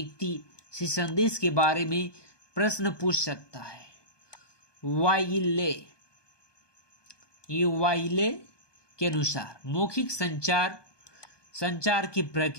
से संदेश के बारे में प्रश्न पूछ सकता है। वाइले के अनुसार मौखिक संचार की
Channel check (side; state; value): right; late; 1.2 ms